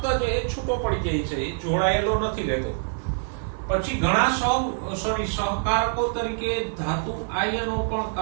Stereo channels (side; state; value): left; silent; digital silence